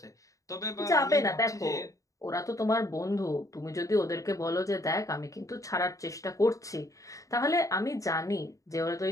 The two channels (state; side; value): late; right; 0.16 ms